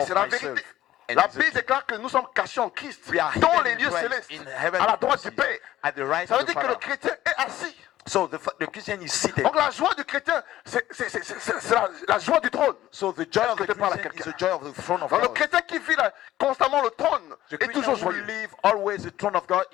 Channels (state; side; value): quieter; right; 14.1 dB